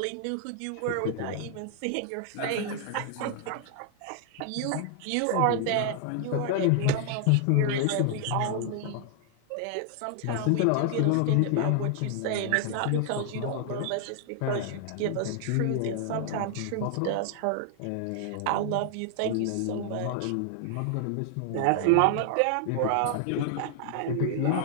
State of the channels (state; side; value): different; both; correlation 0.00